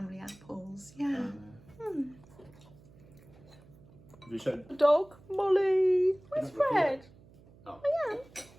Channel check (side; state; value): right; noise; hum, 24 dB below the sound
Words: apples. Yeah. Have you shown? Dog, Molly. Where's Fred? Oh. I am.